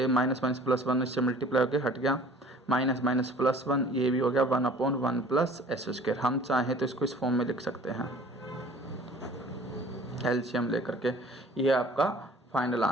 माइनस माइनस प्लस 1 इससे मल्टीप्लाई होकर हट गया, माइनस माइनस प्लस 1 ये भी हो गया 1 अपॉन 1 प्लस एस स्क्वायर। हम चाहें तो इसको इस फॉर्म में लिख सकते हैं एलसीएम लेकर के, ये आपका फाइनल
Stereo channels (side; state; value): both; normal; correlation 0.49